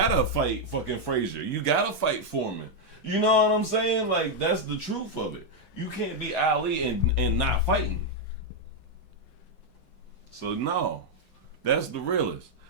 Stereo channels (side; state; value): right; late; 7.9 ms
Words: fight fucking Frazier. You gotta fight Foreman. You know what I'm saying? Like, that's the truth of it. You can't be Ali and not fighting. So no, that's the realest.